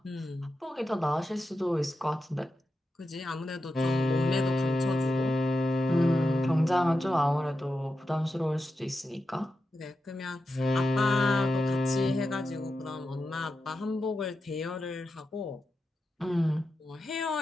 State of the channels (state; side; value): normal; both; correlation 0.89